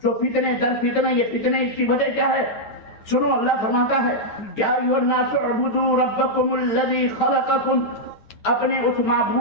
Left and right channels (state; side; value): late; right; 9.3 ms